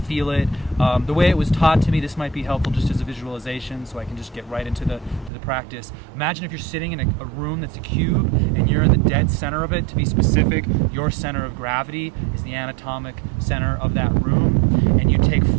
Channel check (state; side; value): drops out; left; at 5.3 s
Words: feel it. The way it was taught to me, this might be helpful just as a visualization, so I can just get right into the practice. Imagine if you're sitting in a room that's a cube, and you're in the dead center of it. To be specific, your center of gravity is the anatomic center of that room, and you take